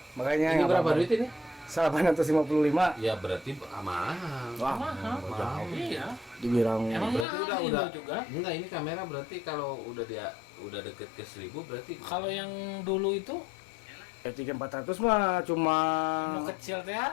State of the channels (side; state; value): right; drops out; at 7.2 s